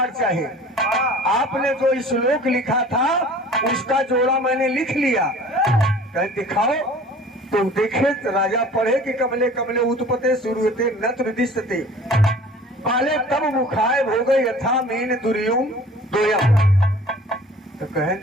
चाहिए। आपने जो श्लोक लिखा था उसका जोड़ा मैंने लिख लिया। कहे दिखाओ। तो देखे तो राजा पढ़े कि कमले कमले उत्पते शुरूते नत्र दिशते पाले तब मुखाय हो गई यथा मीन दुर्युम दोयम। तो कहे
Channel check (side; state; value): both; normal; correlation 0.46